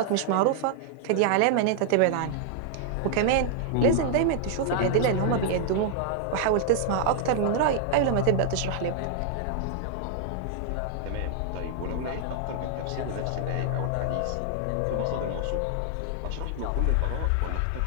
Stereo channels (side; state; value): both; different; correlation 0.00